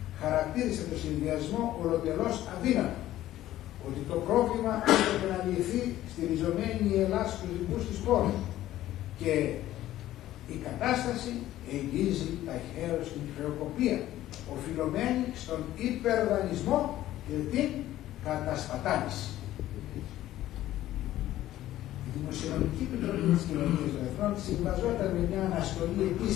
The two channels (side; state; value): right; quieter; 14.0 dB